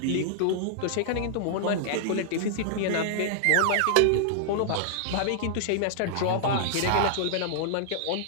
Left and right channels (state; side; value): different; both; correlation -0.01